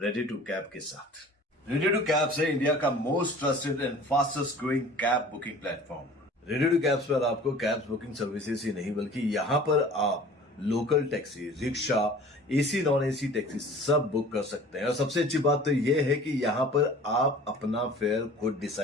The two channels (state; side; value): normal; both; correlation 0.45